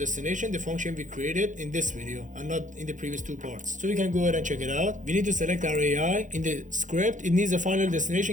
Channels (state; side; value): late; left; 0.37 ms